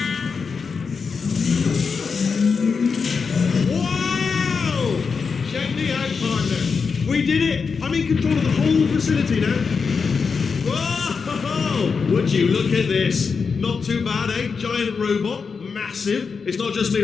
Wow! Check me out, partner. We did it. I'm in control of the whole facility now. Whoa! Would you look at this? Not too bad, eh? Giant robot, massive. It's not just me,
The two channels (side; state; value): right; quieter; 5.4 dB